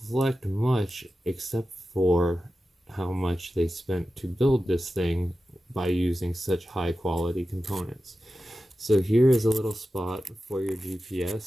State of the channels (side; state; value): both; normal; correlation 0.93